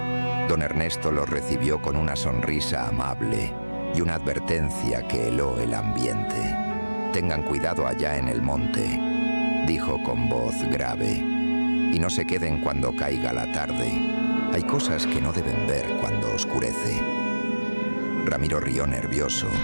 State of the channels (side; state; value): both; inverted; correlation -1.00